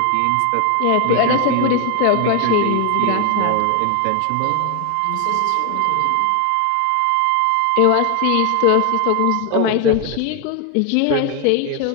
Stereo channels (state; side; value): different; both; correlation 0.01